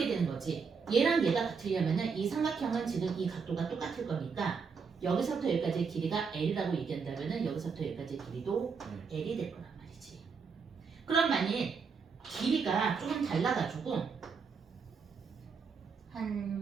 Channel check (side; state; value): left; quieter; 5.5 dB